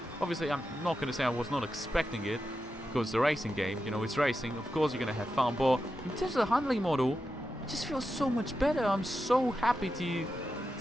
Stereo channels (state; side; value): normal; both; correlation 0.89